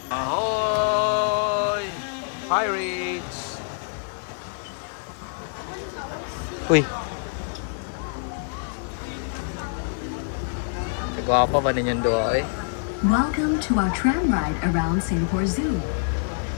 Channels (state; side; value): silent; right; digital silence